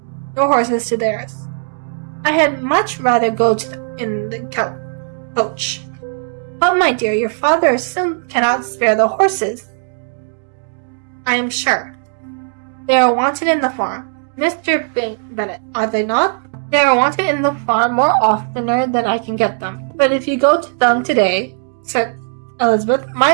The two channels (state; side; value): silent; left; digital silence